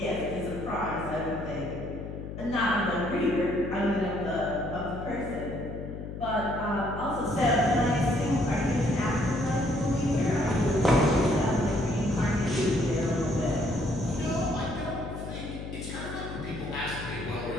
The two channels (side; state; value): left; noise; hum, 8 dB below the sound